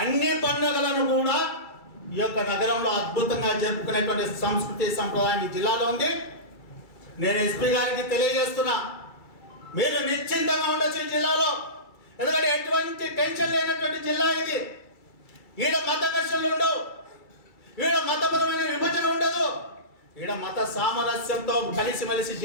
అన్ని పండుగలను కూడా ఈ యొక్క నగరంలో అద్భుతంగా జరుపుకునేటువంటి సంస్కృతి సంప్రదాయం ఈ జిల్లాలో ఉంది. నేను ఎస్పీ గారికి తెలియజేస్తున్నా, మీరు నిశ్చింతంగా ఉండొచ్చు ఈ జిల్లాలో. ఎందుకంటే ఎటువంటి టెన్షన్ లేనటువంటి జిల్లా ఇది. ఈడ మత ఘర్షణలు ఉండవు, ఈడ మతపరమైన విభజన ఉండదు, ఈడ మత సామరస్యంతో కలిసిమెలిసి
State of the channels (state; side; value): late; right; 2.3 ms